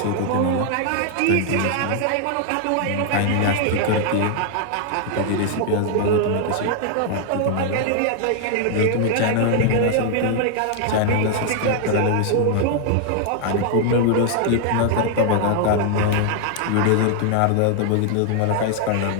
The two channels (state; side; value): different; both; correlation 0.00